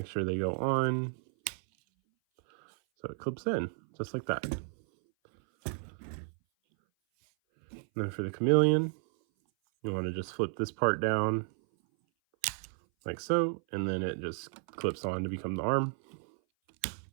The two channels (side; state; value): left; silent; 56 dB below the other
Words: sure they go on, so it clips in, just like that. And then for the chameleon, you want to just flip this part down, like so, and then it just clips on to become the arm.